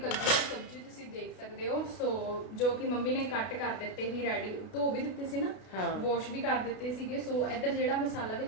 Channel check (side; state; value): right; late; 32 ms